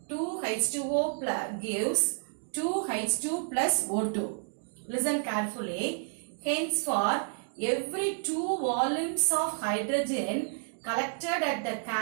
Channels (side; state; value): left; silent; digital silence